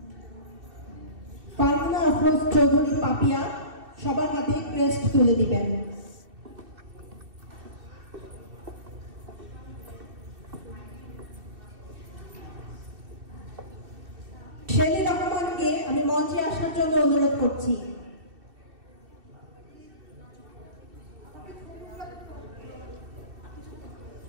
ফারহানা আফরোজ চৌধুরী পাপিয়া সবার হাতে ক্রেস্ট তুলে দিবেন। শেলি রহমানকে আমি মঞ্চে আসার জন্য অনুরোধ করছি।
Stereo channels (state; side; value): late; left; 2.7 ms